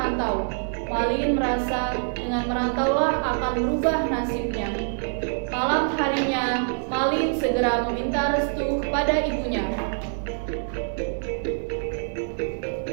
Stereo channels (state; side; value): silent; left; digital silence